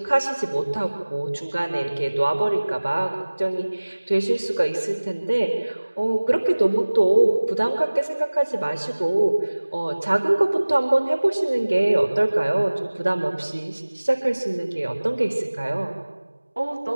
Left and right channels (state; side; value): inverted; both; correlation -1.00